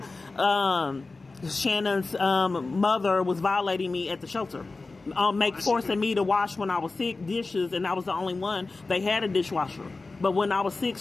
mother was violating me at the shelter, forcing me to wash when I was sick dishes, and I was the only one. They had a dishwasher. But when I was sick,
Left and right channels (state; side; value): quieter; right; 3.6 dB